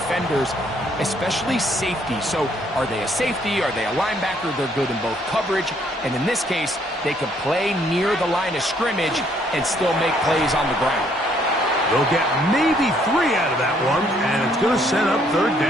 especially safety. So are they a safety? Are they a linebacker? They're good in both coverage. And in this case, they can play near the line of scrimmage and still make plays on the ground. They'll get maybe 3 out of that one, and it's going to set up 3rd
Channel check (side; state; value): both; normal; correlation 0.67